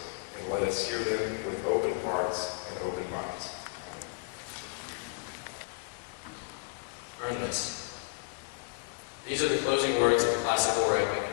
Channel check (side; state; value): right; quieter; 31.4 dB